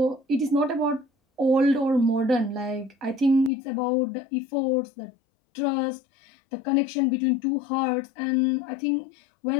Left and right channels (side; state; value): right; drops out; at 3.5 s